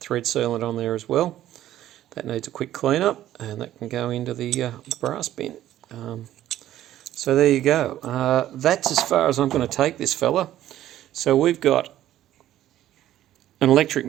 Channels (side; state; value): left; quieter; 12.9 dB